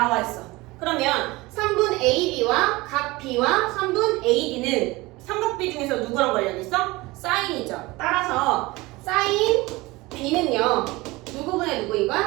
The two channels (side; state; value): left; quieter; 21.5 dB